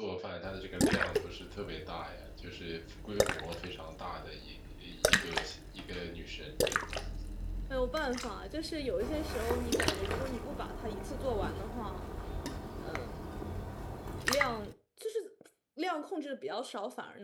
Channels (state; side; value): identical; both; correlation 1.00